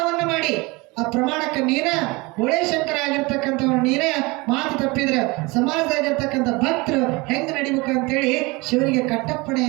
ಮಾಡಿ. ಆ ಪ್ರಮಾಣಕ್ಕೆ ನೀನ ಶಂಕರ ಆಗಿರ್ತಕ್ಕಂಥವ್ರು ನೀನೇ ಮಾತು ತಪ್ಪಿದ್ರೆ ಸಮಾಜದಾಗಿರ್ತಕ್ಕಂಥ ಭಕ್ತರು ಹೆಂಗ್ ನಡಿಬೇಕು ಅಂತೇಳಿ ಶಿವನಿಗೆ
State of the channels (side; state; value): left; quieter; 24.8 dB